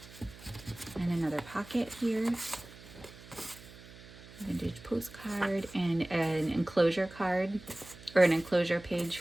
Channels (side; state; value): right; noise; hum, 19 dB below the sound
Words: And another pocket here. Vintage postcard and an enclosure card, or an enclosure page